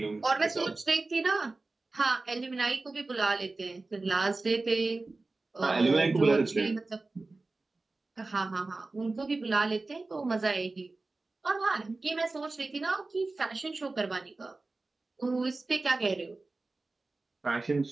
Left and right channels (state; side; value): quieter; left; 3.4 dB